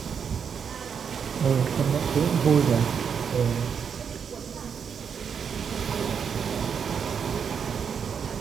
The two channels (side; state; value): left; quieter; 7.0 dB